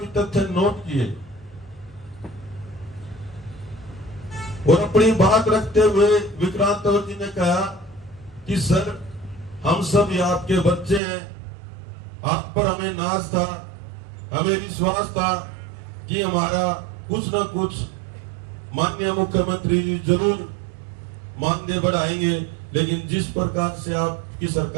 तथ्य नोट किए और अपनी बात रखते हुए विक्रांत तंवर जी ने कहा कि सर हम सब ये आपके बच्चे हैं, आप पर हमें नाज था, हमें विश्वास था कि हमारा कुछ न कुछ माननीय मुख्यमंत्री जी जरूर मानदेय बढ़ाएंगे, लेकिन जिस प्रकार से आपकी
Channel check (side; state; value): left; drops out; at 11.0 s